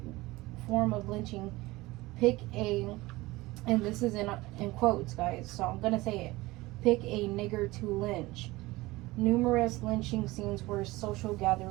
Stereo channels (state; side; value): quieter; left; 20.1 dB